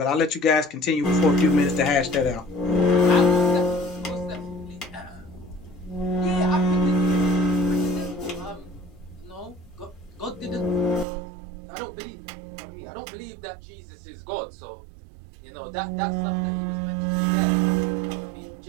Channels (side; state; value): left; drops out; at 11.1 s